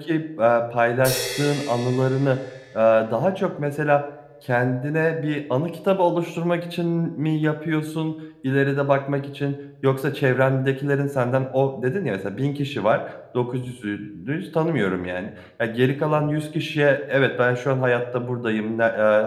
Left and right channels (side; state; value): both; identical; correlation 1.00